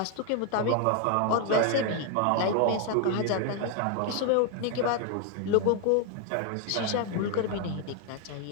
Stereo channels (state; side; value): different; both; correlation 0.00